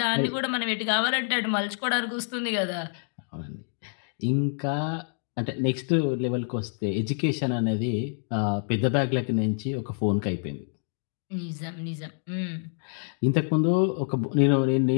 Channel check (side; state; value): right; silent; digital silence